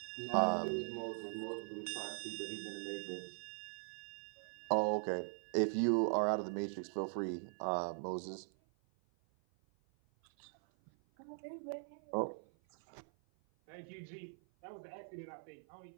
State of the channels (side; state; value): left; silent; 50 dB below the other